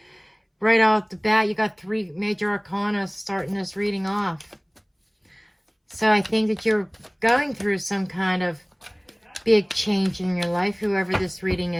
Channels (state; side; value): identical; both; correlation 1.00